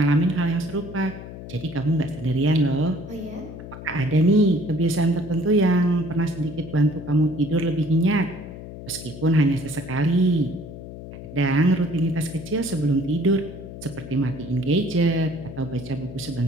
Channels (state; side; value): noise; left; hum, 12 dB below the sound